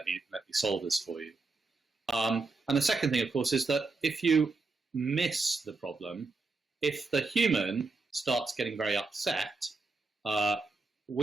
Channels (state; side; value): quieter; left; 3.8 dB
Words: me solve this for you. And the second thing, of course, is that if you miss the problem, if the human starts getting very upset,